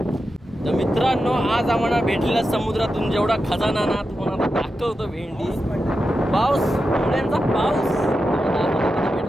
तर मित्रांनो आज आम्हाला भेटलेल्या समुद्रातून जेवढा खजाना ना तुम्हाला दाखवतो भेंडी. पाऊस, मुळ्यांचा पाऊस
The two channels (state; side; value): normal; both; correlation 0.89